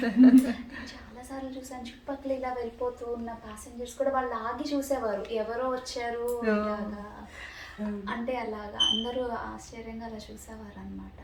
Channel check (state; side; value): identical; both; correlation 1.00